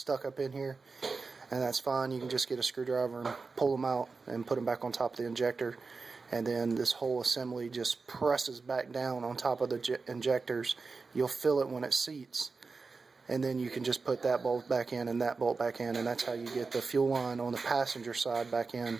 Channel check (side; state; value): left; quieter; 4.3 dB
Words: up in here, and that's fine. You can just get a screwdriver and pull them out and put them back on top of the injector, and then this whole assembly just presses back down on top of the injectors. You'll feel it when it seats, and then you can just put that bolt back in and that bolt back in, and that's how you get the fuel line on the passenger side back in.